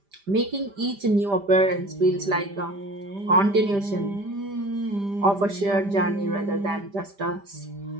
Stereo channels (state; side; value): late; left; 5.0 ms